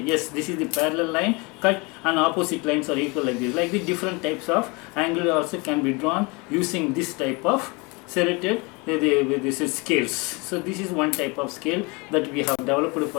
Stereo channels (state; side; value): quieter; right; 28.0 dB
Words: yes, this is the parallel line cut and opposite lines are equal like this. Like the different types of angle also can be drawn using this type of serrated this is scales. So this is one type of scale that we have developed